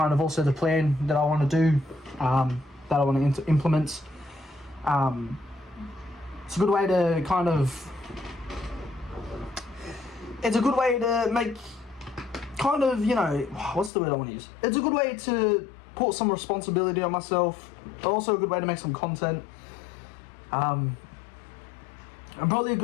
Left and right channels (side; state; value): right; drops out; at 13.9 s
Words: of also the plan that I want to do, that I want to implement. It's a good way to it's a good way to make what's the word I want to use? It's a good way to put some responsibility on myself, but also a good way to make some content. And probably a